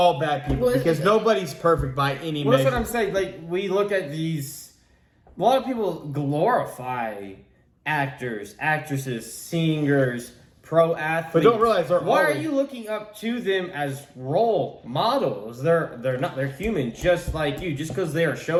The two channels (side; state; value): both; identical; correlation 1.00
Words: bad people Well, because nobody's perfect by any Well, that's measure. what I'm saying. Like we look at these, a lot of people glorify actors, actresses, singers, pro athletes, But don't realize they're why are always- you looking up to them as role models? They're not. They're human, just like you. Just because they are